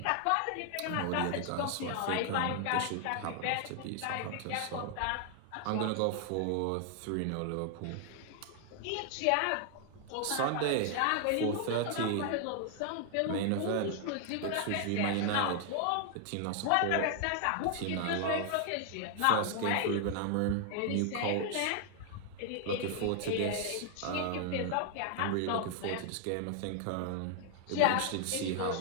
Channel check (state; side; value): different; both; correlation 0.00